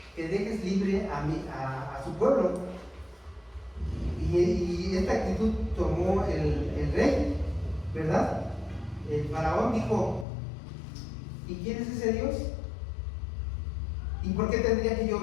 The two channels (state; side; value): drops out; right; at 10.2 s